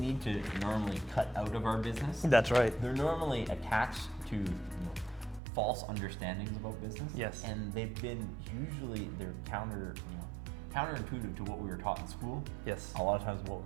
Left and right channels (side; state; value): left; drops out; at 5.4 s